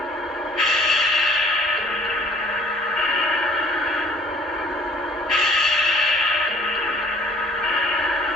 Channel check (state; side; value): normal; both; correlation 0.55